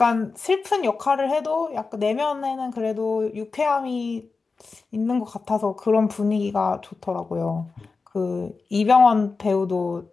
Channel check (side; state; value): right; quieter; 4.3 dB